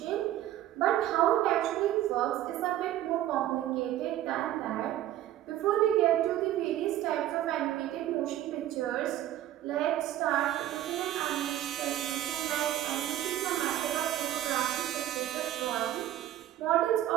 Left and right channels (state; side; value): quieter; left; 12.9 dB